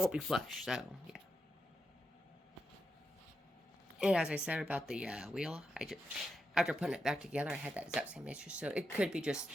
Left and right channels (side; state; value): both; normal; correlation 0.86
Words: be flush. So yeah. And as I said about the wheel, after putting it back together, I had that exact same issue. So it could be just